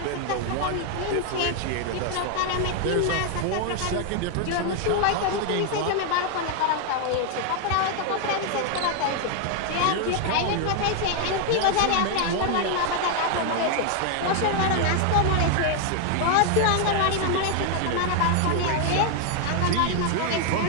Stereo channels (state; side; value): different; both; correlation 0.00